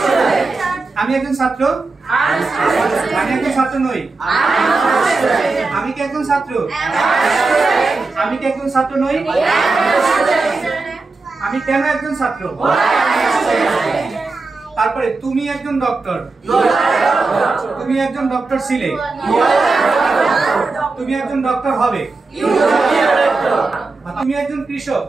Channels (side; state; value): left; quieter; 3.8 dB